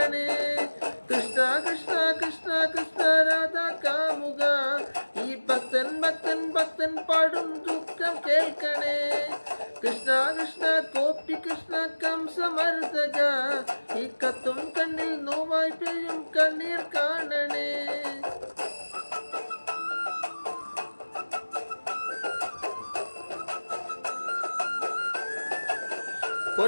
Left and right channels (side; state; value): both; inverted; correlation -1.00